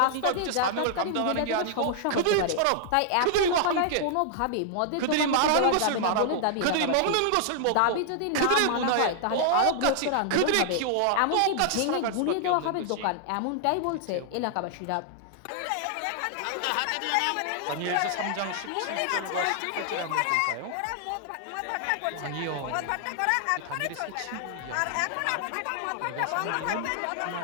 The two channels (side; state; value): both; different; correlation -0.01